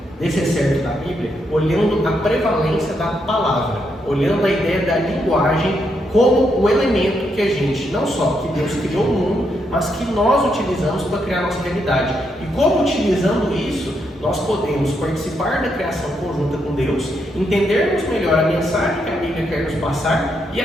desse excerto da Bíblia, olhando a prevalência da palavra, olhando a ideia da linguagem como o elemento que a gente, não só que Deus criou o mundo, mas que nós utilizamos para criar a nossa realidade. E como utilizando isso, nós podemos participar da criação conjunta com Deus, entendermos melhor a mensagem que a Bíblia quer nos passar e,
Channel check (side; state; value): both; normal; correlation 0.79